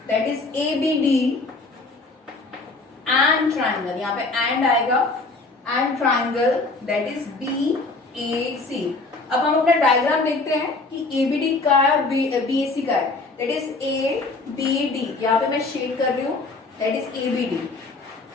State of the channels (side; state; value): right; quieter; 3.5 dB